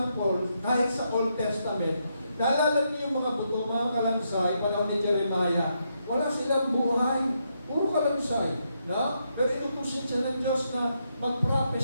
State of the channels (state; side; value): inverted; both; correlation -0.80